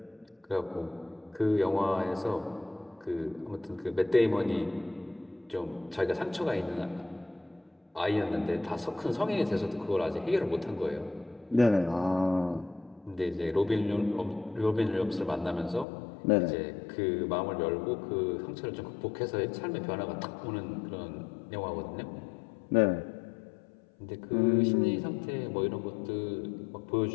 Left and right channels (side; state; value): right; drops out; at 15.9 s